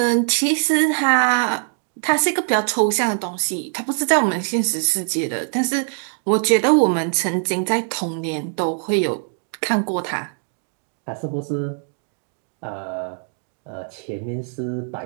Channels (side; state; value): left; silent; 63 dB below the other